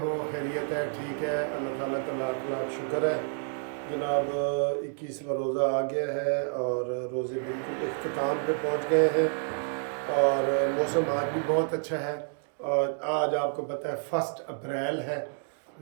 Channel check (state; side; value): silent; left; 55 dB below the other